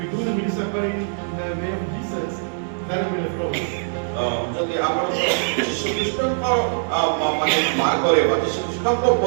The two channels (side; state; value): left; silent; digital silence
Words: do the ministry according in the way of Jesus, that will be leftovers. ଯଦି ଆପଣ ଯୀଶୁ ଖ୍ରୀଷ୍ଟଙ୍କ ମାନେ ମାର୍ଗରେ ବା ଯୀଶୁ ଖ୍ରୀଷ୍ଟଙ୍କ